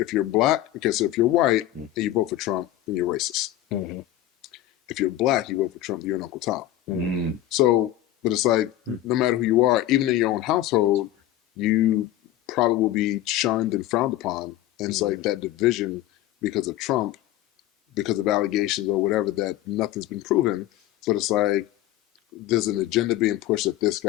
you're black, so if you're white and you vote for Trump, then you're racist. Mm-hmm. If you're black, you vote for Trump, you're an Uncle Tom. Mm-hmm. So, but it's like, no matter who you are, even in your own household, you probably will be shunned and frowned upon. And it's like that division because of Trump, because of allegations or whatever, that nothing's been proven. But it's like, there's an agenda being pushed that this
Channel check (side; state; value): right; quieter; 13.8 dB